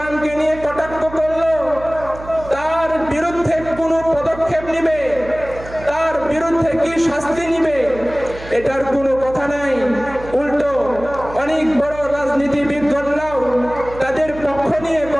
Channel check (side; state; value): right; noise; hum, 15 dB below the sound